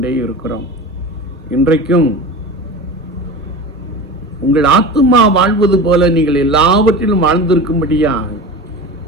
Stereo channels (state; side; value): normal; both; correlation 0.31